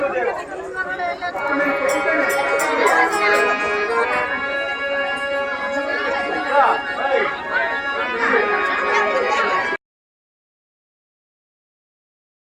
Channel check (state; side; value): identical; both; correlation 1.00